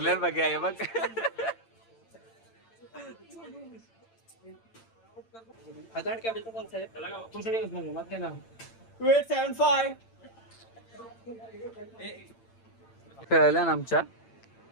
बघा हे बघ. खेळल्या ना आमच्या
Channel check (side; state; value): right; late; 8.9 ms